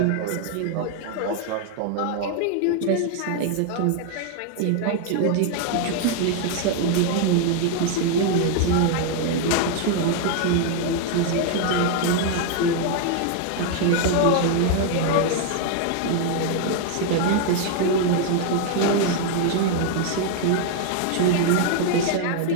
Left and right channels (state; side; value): different; both; correlation 0.00